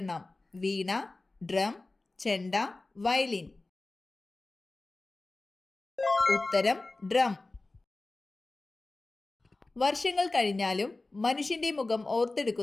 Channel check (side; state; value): right; quieter; 3.2 dB